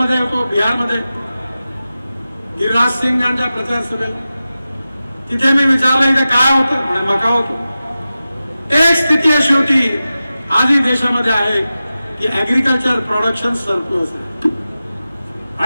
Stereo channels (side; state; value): both; inverted; correlation -0.94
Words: होतो, बिहारमध्ये गिरिराज सिंग यांच्या प्रचार सभेला. तिथे मी विचारलं, इथे काय होतं? म्हणे मका होतो. एक स्थिती अशी होती आजही देशामध्ये आहे की ऍग्रिकल्चर प्रोडक्शन सरप्लस आहे